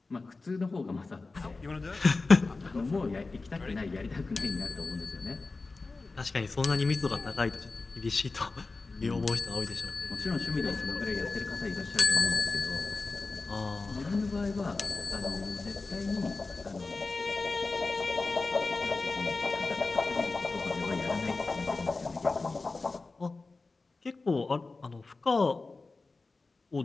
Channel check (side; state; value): right; quieter; 3.7 dB